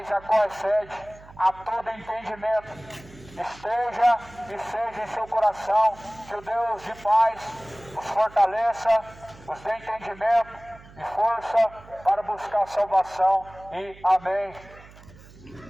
a qual excede a todo entendimento, esteja e seja em seu coração. Que o Deus de paz os fortaleça, os dê entendimento e força para buscar salvação. E amém.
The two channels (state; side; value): noise; right; hum, 21 dB below the sound